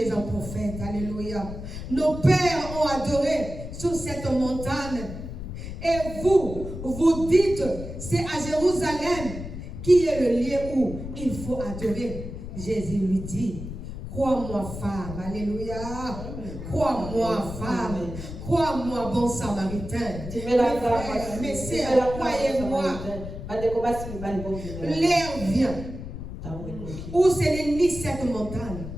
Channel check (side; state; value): left; noise; rumble, 9 dB below the sound